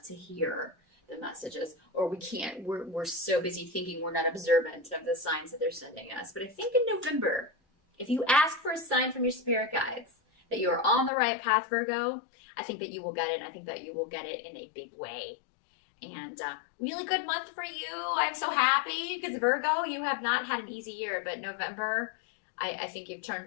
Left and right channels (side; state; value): right; drops out; at 11.1 s